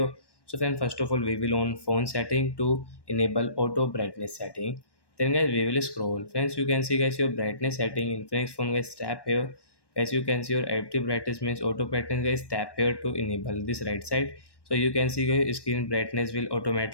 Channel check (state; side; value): late; right; 1.1 ms